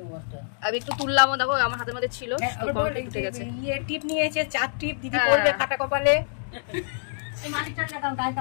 আমি একটু তুললামও, দেখো আমার হাতের মধ্যে ছিল। টিপ নিয়েছে 4 টিপ, দিদি পরবে কাটা কপালে।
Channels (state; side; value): silent; right; digital silence